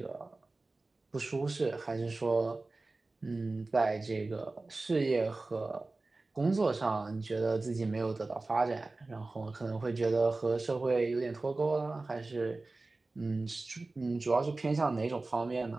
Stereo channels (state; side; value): quieter; left; 3.3 dB